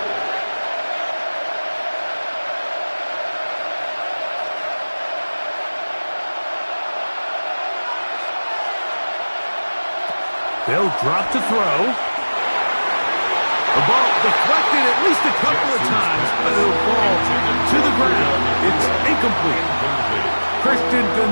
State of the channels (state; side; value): inverted; both; correlation -1.00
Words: They'll drop to throw. The ball deflected at least a couple of times, but it'll fall to the ground. It's incomplete. Christian